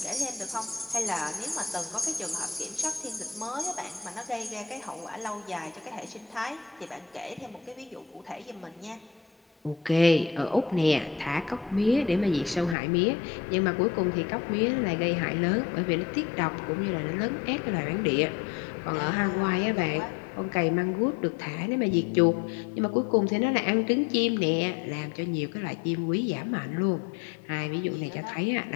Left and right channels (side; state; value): right; drops out; at 12.8 s